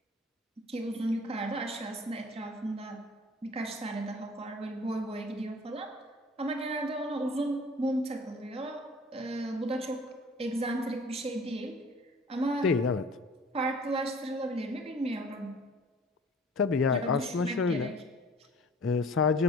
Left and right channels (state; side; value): normal; both; correlation 0.48